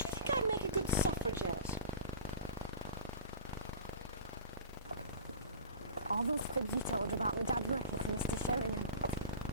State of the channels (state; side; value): inverted; both; correlation -0.34